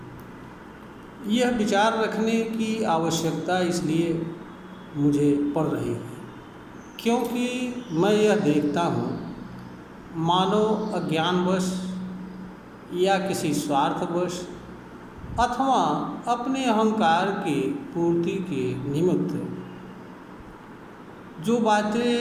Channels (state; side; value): identical; both; correlation 1.00